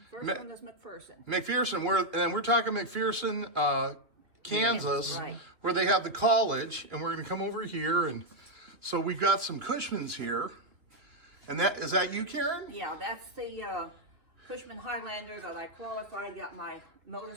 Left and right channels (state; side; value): late; left; 3.4 ms